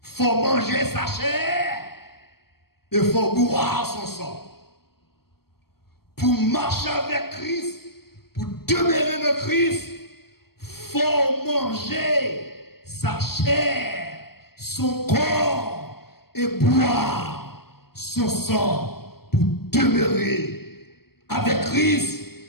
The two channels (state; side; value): late; right; 0.95 ms